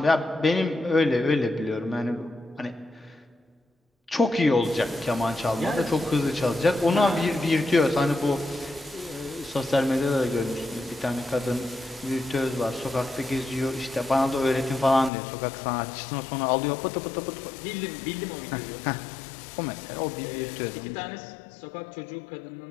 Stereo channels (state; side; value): drops out; right; at 15.1 s